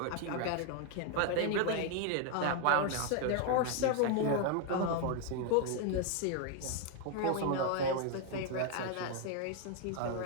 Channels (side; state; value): both; different; correlation 0.01